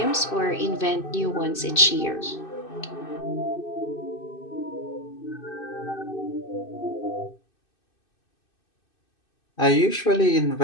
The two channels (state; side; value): late; right; 2.6 ms